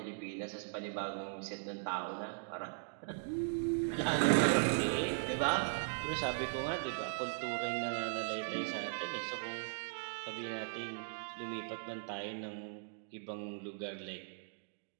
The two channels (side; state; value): left; silent; digital silence